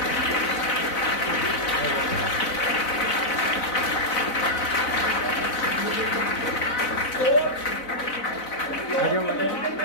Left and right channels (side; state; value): right; late; 4.0 ms